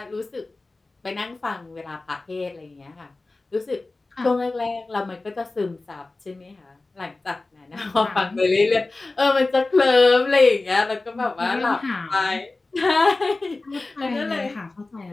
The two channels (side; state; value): right; quieter; 3.3 dB